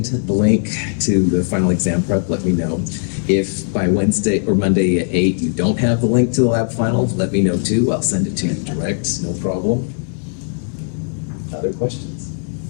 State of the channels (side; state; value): right; silent; digital silence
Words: the link to the final exam prep, let me know. If by Wednesday or Monday at 8 you don't have the link to the lab final, let me know too. I'll send it to you direct, no problem. Other questions?